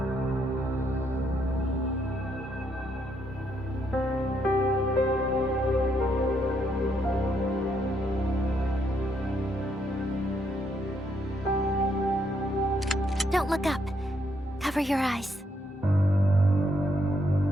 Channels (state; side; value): normal; both; correlation 0.75